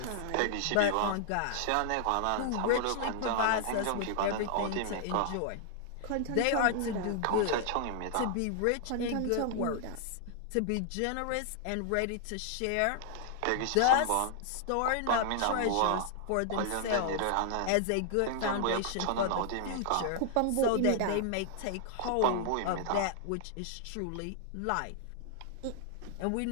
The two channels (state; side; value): different; both; correlation 0.00